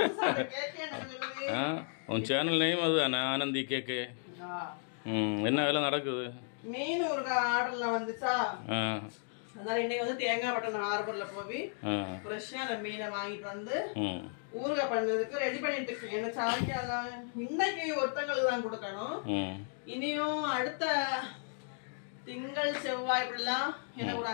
உன் சேனல் நேம் அதுதானே ஆனந்தி கேக்கு. என்ன வேலை நடக்குது? மீன் ஊறுகா ஆர்டர்ல வந்துச்சா, அதனால இன்னைக்கு வந்து தேங்காய் பட்டன் ஹார்பர்ல போய் ஃப்ரெஷ்ஷா அந்த மீனை வாங்கிட்டு வந்து ஊறுகா பண்ணதுக்கு ரெடி பண்ணிட்டு இருக்கேன். என்ன சாயங்காலம் இன்னைக்கு ஒருத்தங்களுக்கு தான் கொடுக்கணும். இனியும் அடுத்த திங்கள் செவ்வாய் இப்படிலாம் எனக்கு ஒரு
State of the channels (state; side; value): silent; right; 55 dB below the other